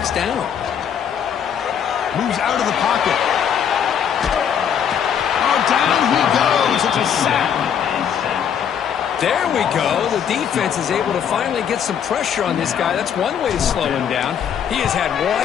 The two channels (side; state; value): right; quieter; 8.3 dB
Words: down. Moves out of the pocket. Oh, down he goes. It's a sack. There we go. The defense is able to finally get some pressure on this guy. That's one way to slow him down. He has had